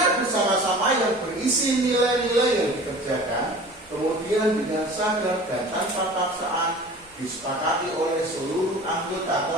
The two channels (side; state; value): both; normal; correlation 0.41